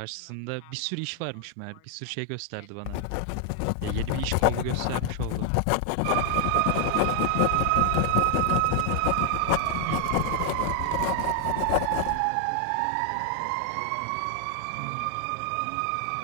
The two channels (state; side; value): different; both; correlation 0.00